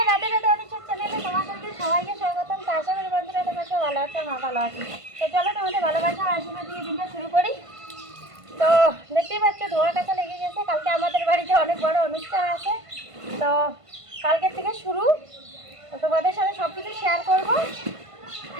রাতে রাতে অনিচ্ছুক চ্যানেলে তোমাদেরকে সবাইকে স্বাগতম। তো আশা করি বন্ধুরা তোমরা সব ভালো আছো, মা ভালো আছি। তো চলো তোমাদের ভালোবাসা আশীর্বাদ দিয়ে দিনটা শুরু করি। তো দেখতেই পাচ্ছ ধোয়া কাছা লেগে গেছে। কালকে আমাদের বাড়িতে অনেক বড় অনুষ্ঠান আছে, তো কালকের থেকে শুরু। তো তোমাদের সাথে সব কিছু শেয়ার করবো,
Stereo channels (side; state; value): left; late; 1.5 ms